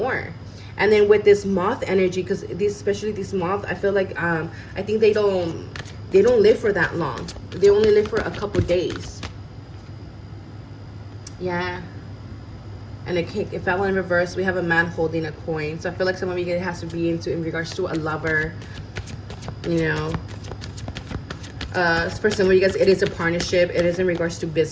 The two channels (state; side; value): identical; both; correlation 1.00